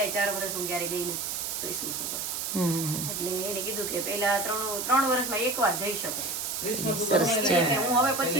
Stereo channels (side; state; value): right; noise; hiss, 3 dB below the sound